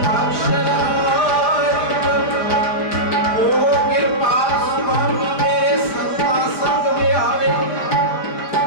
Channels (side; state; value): right; late; 5.2 ms